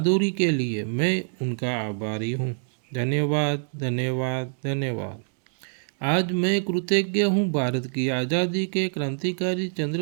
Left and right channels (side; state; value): left; silent; digital silence